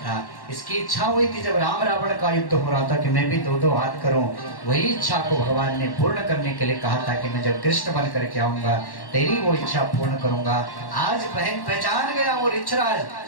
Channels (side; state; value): right; late; 1.1 ms